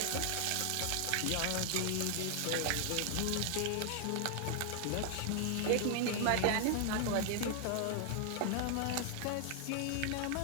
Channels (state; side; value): different; both; correlation 0.00